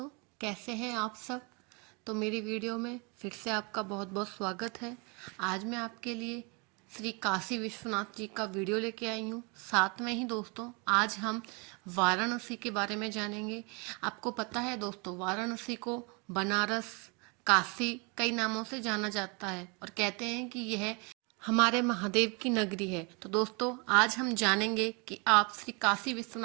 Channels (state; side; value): quieter; left; 31.4 dB